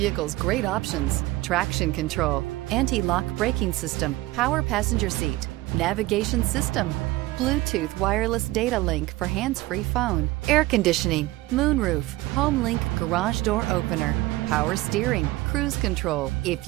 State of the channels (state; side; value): quieter; left; 18.4 dB